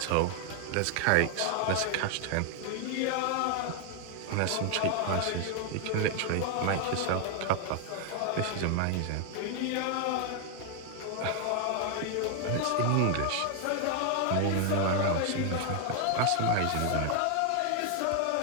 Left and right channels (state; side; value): different; both; correlation 0.00